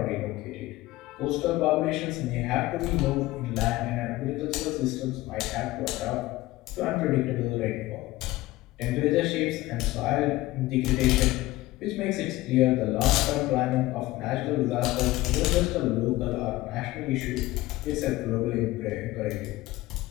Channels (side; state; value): right; quieter; 18.2 dB